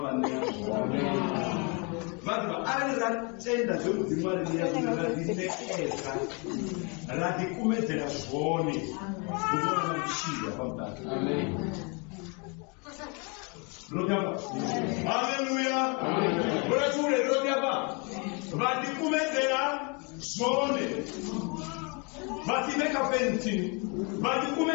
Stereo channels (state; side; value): quieter; right; 32.9 dB